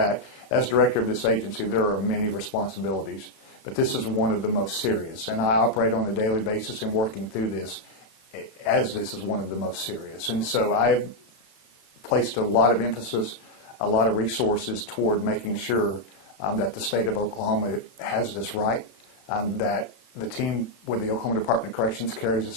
as director of this agency, there are many responsibilities, but this is one of the most serious. And I operate on a daily basis in working through this, as this is one of the most serious. And so I've placed a lot of emphasis, a lot of resources toward making sure that the state of Oklahoma has this right, that the team with the Oklahoma Department of Corrections carries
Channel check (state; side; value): late; right; 31 ms